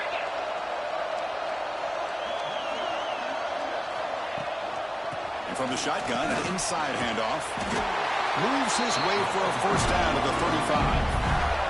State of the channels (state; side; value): identical; both; correlation 1.00